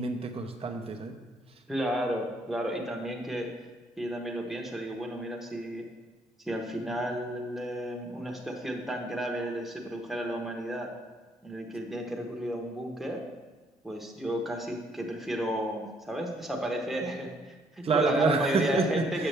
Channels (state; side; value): normal; both; correlation 0.68